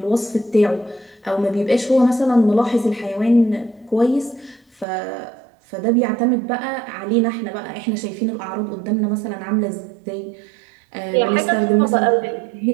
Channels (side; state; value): left; drops out; at 4.9 s